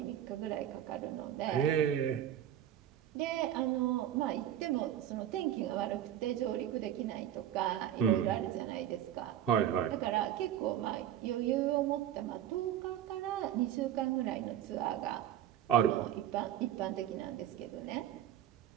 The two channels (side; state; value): left; quieter; 11.1 dB